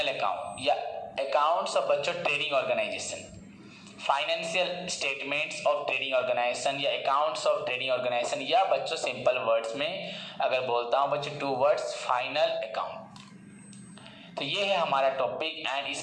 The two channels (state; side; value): identical; both; correlation 1.00